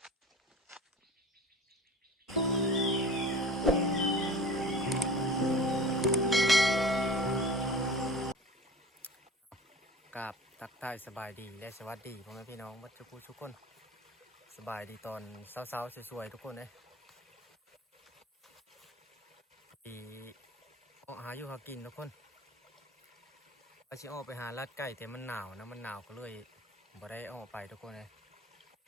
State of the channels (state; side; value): normal; both; correlation 0.39